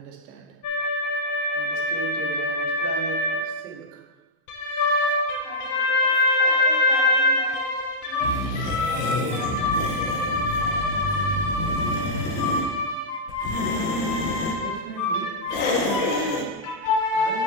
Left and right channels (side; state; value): both; normal; correlation -0.11